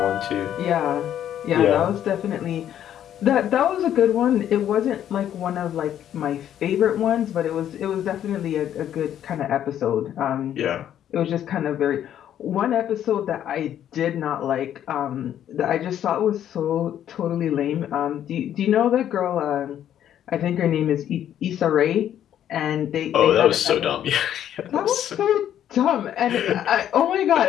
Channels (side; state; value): right; quieter; 10.6 dB